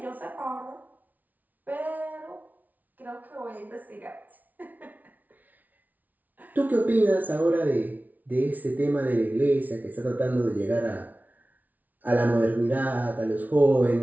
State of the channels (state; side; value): late; left; 0.077 ms